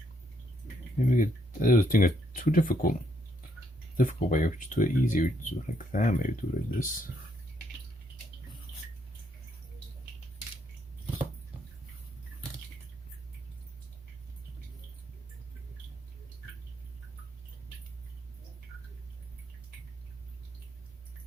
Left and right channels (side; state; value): both; normal; correlation 0.73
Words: Maybe we could, I was thinking it's too difficult. Difficult way. We just do it easy. We just do it like that. Maybe do it like this.